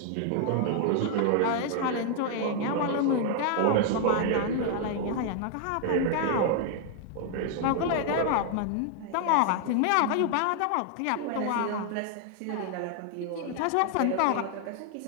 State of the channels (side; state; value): both; different; correlation 0.00